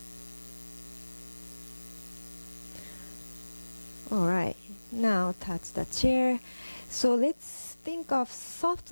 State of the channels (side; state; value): both; inverted; correlation -1.00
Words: Alright, now touch the chair. So let's think of